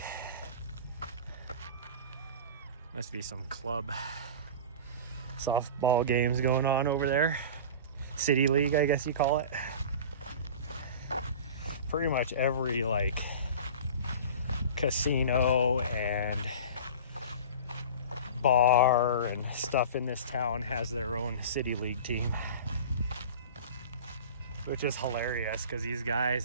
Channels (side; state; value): both; inverted; correlation -0.36